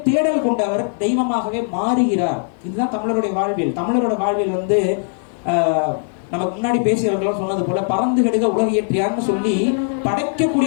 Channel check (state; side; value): silent; right; 57 dB below the other